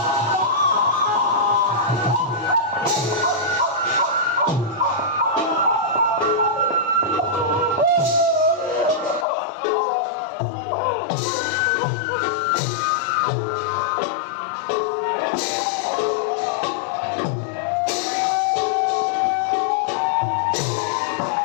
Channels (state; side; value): drops out; right; at 9.2 s